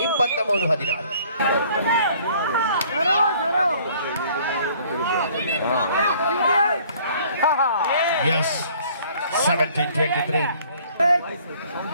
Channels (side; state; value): both; inverted; correlation -0.56